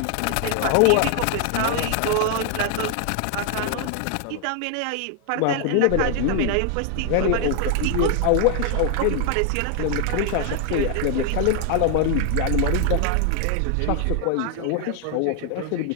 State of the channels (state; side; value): different; both; correlation 0.00